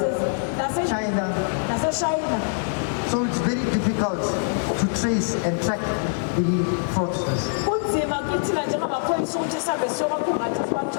China. So it's very difficult to trace and track the fraudsters.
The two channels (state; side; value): silent; right; 63 dB below the other